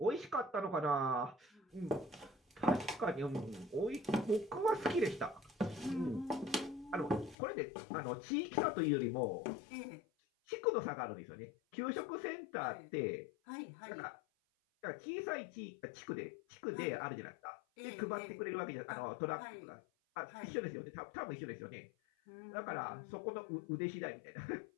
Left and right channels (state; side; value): drops out; right; at 7.4 s